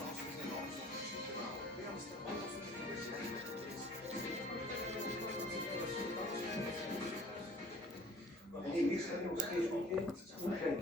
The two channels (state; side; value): normal; both; correlation 0.49